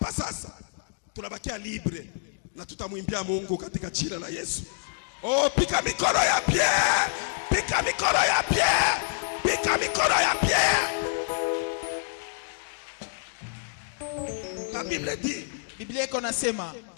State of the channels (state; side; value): silent; right; digital silence